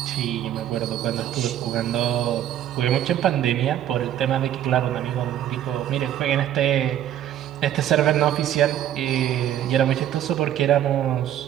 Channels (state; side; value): quieter; left; 11.3 dB